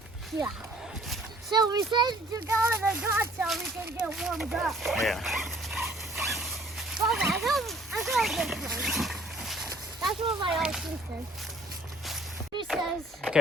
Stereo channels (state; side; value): normal; both; correlation 0.57